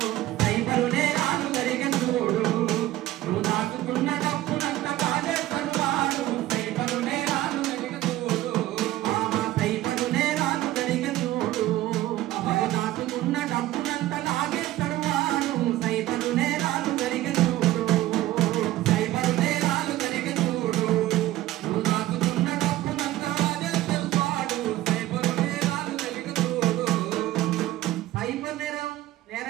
సైబరు నేరాలు జరిగే చూడు నువ్వు దాచుకున్న డబ్బునంత కాజేస్తాడు వాడు సైబరు నేరాలు జరిగే చూడు సైబరు నేరాలు జరిగే చూడు నువ్వు దాచుకున్న డబ్బునంత లాగేస్తాడు వాడు సైబరు నేరాలు జరిగే చూడు సైబరు నేరాలు జరిగే చూడు నువ్వు దాచుకున్న డబ్బునంత లాగేస్తాడు వాడు సైబరు నేరాలు జరిగే చూడు సైబర్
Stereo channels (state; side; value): quieter; left; 15.4 dB